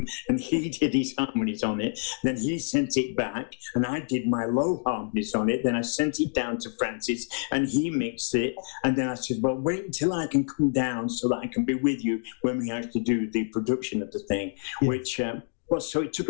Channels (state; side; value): silent; right; 60 dB below the other